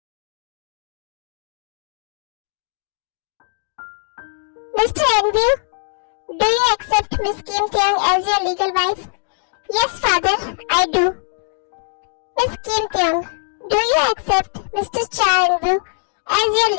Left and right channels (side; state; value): right; silent; digital silence